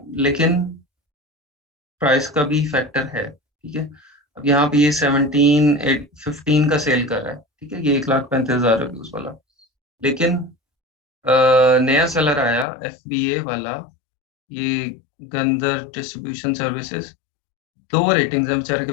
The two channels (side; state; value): right; drops out; at 12.7 s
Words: लेकिन प्राइस का भी फैक्टर है, ठीक है। अब यहाँ पे ये 17-15 का सेल कर रहा है, ठीक है, ये 1,35,000 रिव्यूज वाला, लेकिन नया सेलर आया FBA वाला, ये गंदर डिस्ट्रीब्यूशन सर्विसेज, 2 रेटिंग्स है बेचारे के